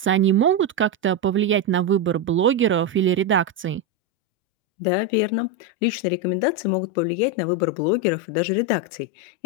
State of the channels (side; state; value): both; normal; correlation 0.08